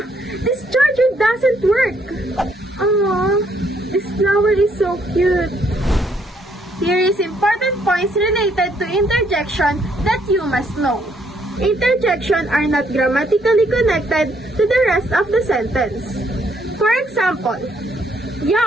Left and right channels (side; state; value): both; normal; correlation 0.70